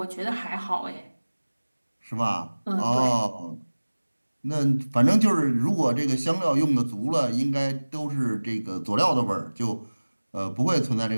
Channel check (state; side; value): inverted; both; correlation -1.00